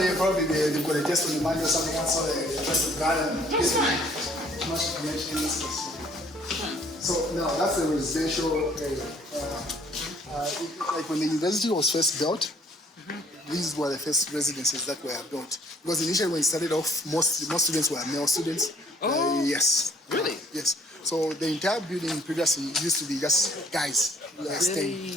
probably they've got a test on the Monday or something else, so they try to gather and That's fine. much information. So now that's the residential area. Like when the university was first built, these were the first residences that were built. Because initially when it started off, most students were male students. Oh. Yes. Really? Yes. So the entire building previously used to be just guys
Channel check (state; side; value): normal; both; correlation 0.60